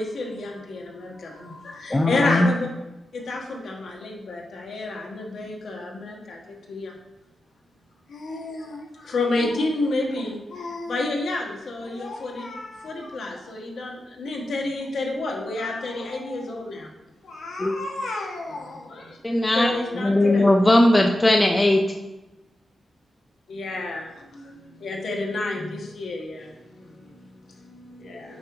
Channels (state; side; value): normal; both; correlation 0.91